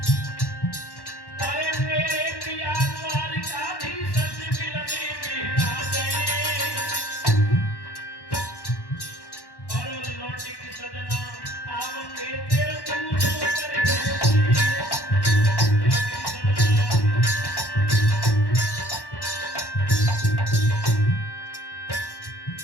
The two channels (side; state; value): right; late; 1.1 ms